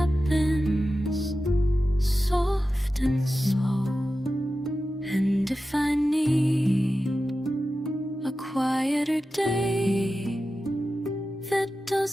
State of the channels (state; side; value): normal; both; correlation 0.93